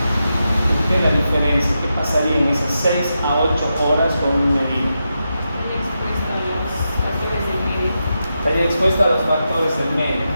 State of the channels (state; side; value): inverted; both; correlation -0.87